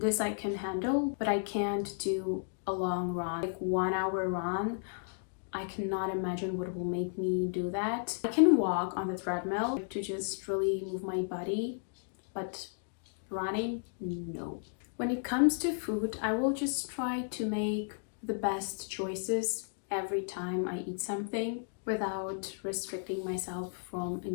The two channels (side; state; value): right; silent; digital silence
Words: I can handle, but I can't do a long run, like 1 hour run. I cannot imagine what will make me do that. I can walk on the treadmill to just really move my body, but running, no. When it comes to food, I will just try to make the best choices every time I eat something without restricting myself from